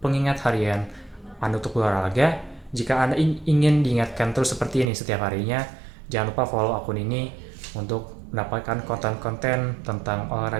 harian Anda untuk berolahraga. Jika Anda ingin diingatkan terus seperti ini setiap harinya, jangan lupa follow akun ini untuk mendapatkan konten-konten tentang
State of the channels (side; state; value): left; drops out; at 4.9 s